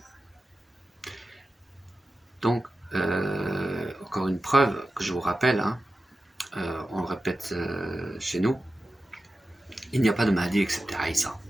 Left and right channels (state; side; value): normal; both; correlation 0.93